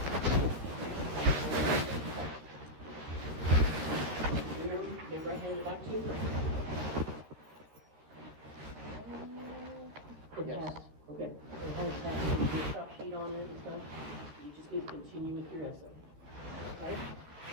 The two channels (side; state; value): left; late; 13 ms